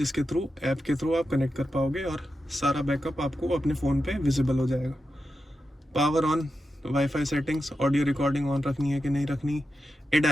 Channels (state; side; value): normal; both; correlation 0.89